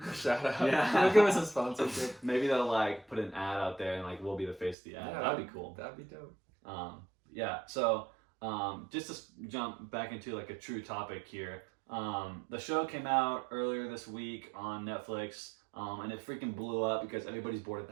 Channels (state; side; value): drops out; left; at 4.8 s